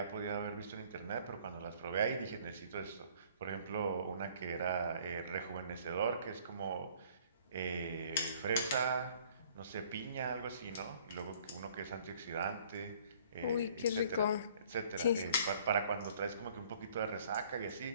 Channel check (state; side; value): inverted; both; correlation -0.56